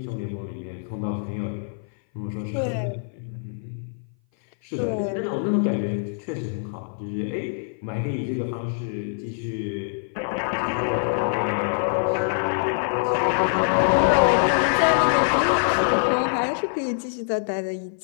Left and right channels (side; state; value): right; silent; 58 dB below the other